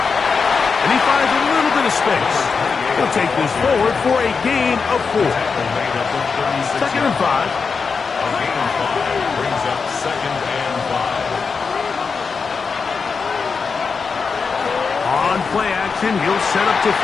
And he finds a little bit of space. He'll take this forward for a gain of 4. Second and 5. A gain of 5 brings up second and 5. On play action, he'll set up to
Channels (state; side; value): quieter; right; 5.2 dB